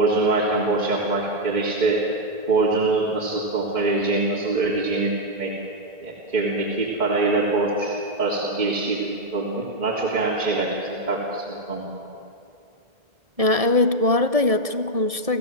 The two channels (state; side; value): late; left; 1.7 ms